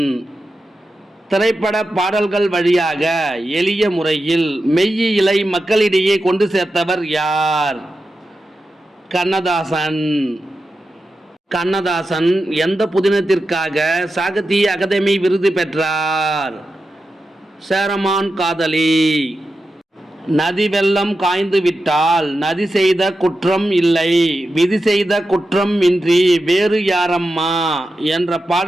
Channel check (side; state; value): both; normal; correlation 0.91